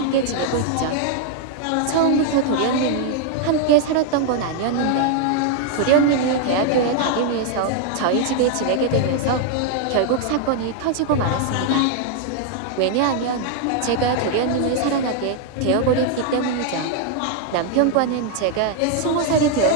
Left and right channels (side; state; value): both; different; correlation 0.00